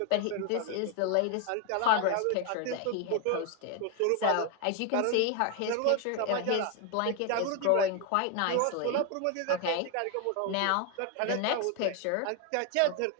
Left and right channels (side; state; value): both; different; correlation 0.01